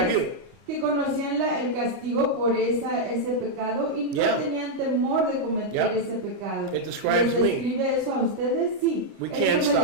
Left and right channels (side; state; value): left; late; 30 ms